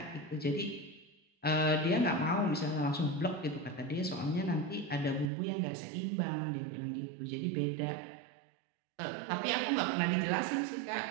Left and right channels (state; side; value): drops out; left; at 5.3 s